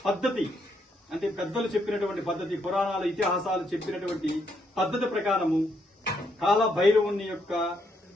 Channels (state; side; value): normal; both; correlation 0.76